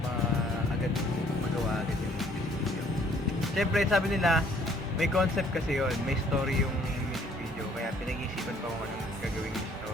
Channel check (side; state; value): both; normal; correlation 0.61